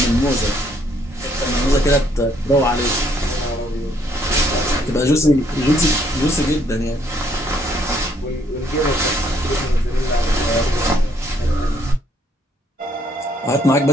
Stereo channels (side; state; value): both; normal; correlation 0.68